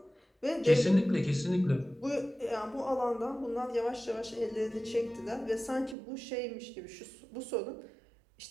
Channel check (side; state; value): left; drops out; at 6.0 s